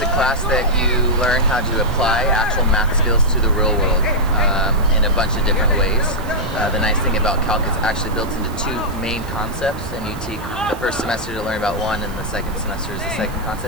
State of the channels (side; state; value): right; noise; hiss, 21 dB below the sound